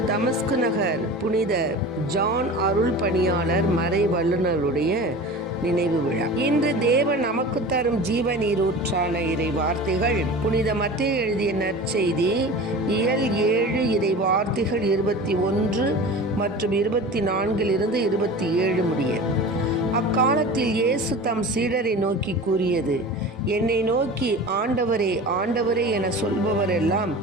தமஸ்கு நகர் புனித ஜான் அருள் பணியாளர் மறை வல்லுநருடைய நினைவு விழா. இன்று தேவன் நமக்கு தரும் ஜீவ நீரூற்றான இறை வார்த்தைகள் புனித மத்தேயு எழுதிய நற்செய்தி இயல் 7 இறை வார்த்தைகள் 21 மற்றும் 24 27 முடிய. அக்காலத்தில் இயேசு தம் சீடரை நோக்கி கூறியது: என்னை நோக்கி ஆண்டவரே ஆண்டவரே என சொல்பவரெல்லாம்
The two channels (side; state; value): both; normal; correlation 0.35